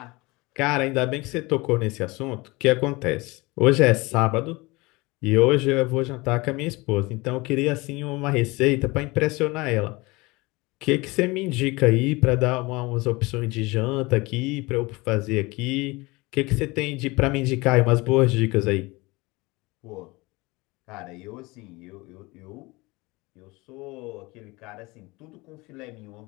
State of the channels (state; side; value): quieter; right; 23.6 dB